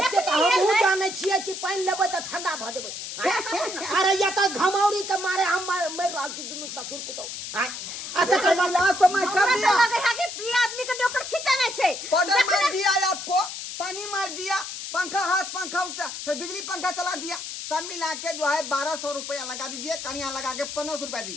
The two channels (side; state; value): left; noise; hiss, 8 dB below the sound